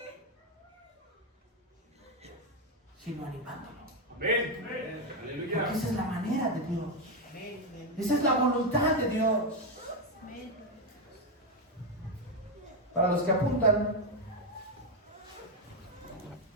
sino animándolo. Amén. Aleluya. Porque esa es la manera de Dios. Esa es la voluntad de Dios. Para los que apuntan,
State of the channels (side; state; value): both; normal; correlation 0.05